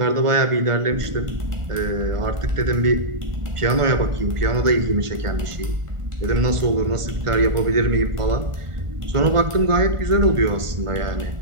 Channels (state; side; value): late; left; 1.5 ms